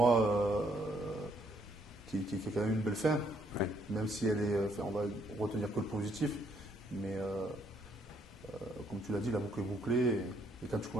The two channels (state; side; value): normal; both; correlation 0.70